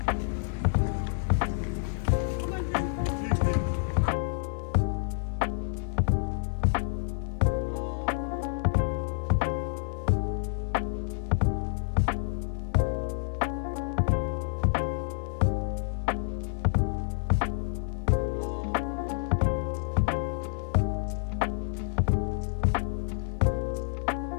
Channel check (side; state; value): right; silent; digital silence